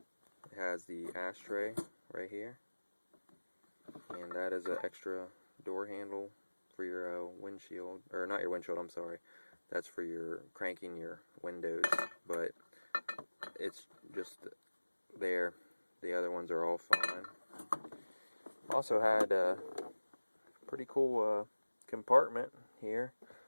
has the ashtray right here, and that is an extra door handle for your windshield, or not your windshield, I'm sorry. That's for your cranking your windows, but it's just there. The other ones are all fine. Also had a pretty cool compartment here,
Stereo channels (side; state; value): both; inverted; correlation -1.00